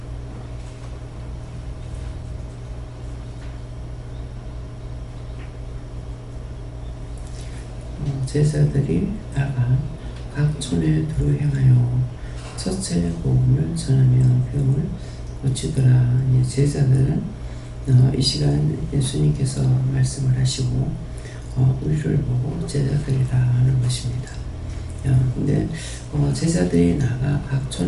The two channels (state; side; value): identical; both; correlation 1.00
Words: 제자들이 나가 각 촌에 두루 행하여 첫째 복음을 전하며 병을 고치더라. 제자들은 이 시간 예수님께서 말씀을 하시고 우리를 보고 제자들이라 하는 것입니다. 근데 제자들이 나가 각